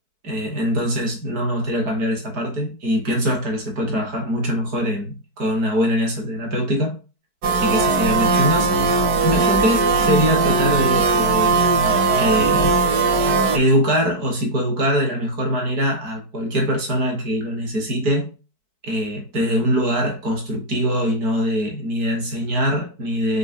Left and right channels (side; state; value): left; late; 4.5 ms